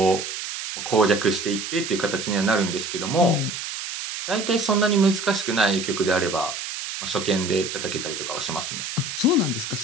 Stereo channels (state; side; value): noise; right; hiss, 6 dB below the sound